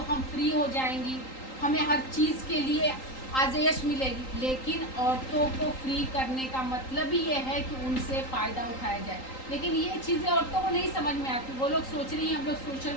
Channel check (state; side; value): late; right; 3.8 ms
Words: हम फ्री हो जाएंगी, हमें हर चीज़ के लिए आज़ाइश मिलेगी। लेकिन औरतों को फ्री करने का मतलब ही ये है कि उनसे फ़ायदा उठाया जाए। लेकिन ये चीज़ें औरतों को नहीं समझ में आती। वो लोग सोच रही हैं हम लोग